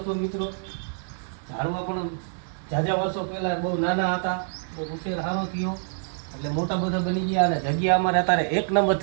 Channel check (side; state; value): left; silent; 61 dB below the other